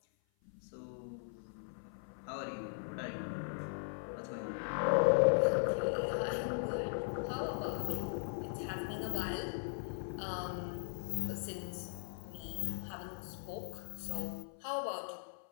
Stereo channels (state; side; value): silent; right; 52 dB below the other